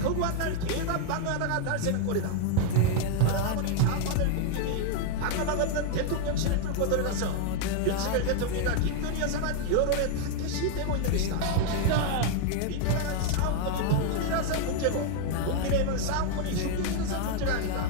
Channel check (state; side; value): different; both; correlation 0.00